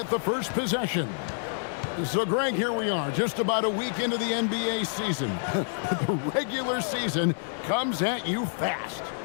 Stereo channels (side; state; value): right; silent; 59 dB below the other